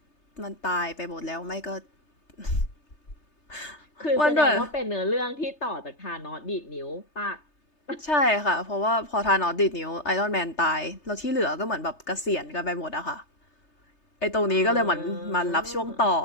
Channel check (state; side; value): late; right; 3.3 ms